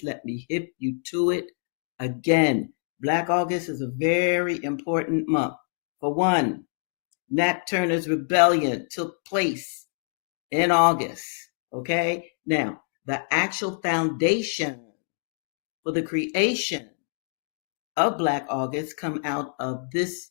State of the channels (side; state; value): right; silent; 61 dB below the other